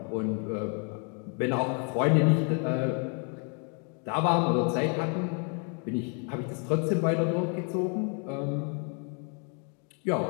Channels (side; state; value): right; quieter; 39.4 dB